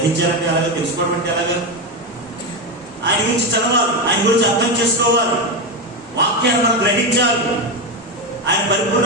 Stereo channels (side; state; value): both; normal; correlation 0.13